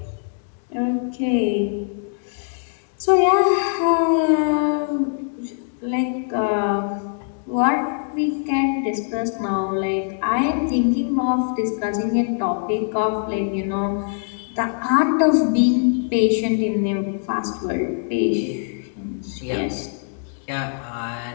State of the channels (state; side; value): silent; right; digital silence